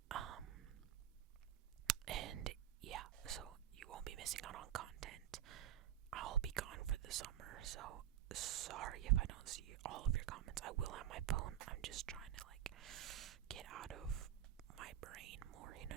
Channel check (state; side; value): quieter; left; 11.3 dB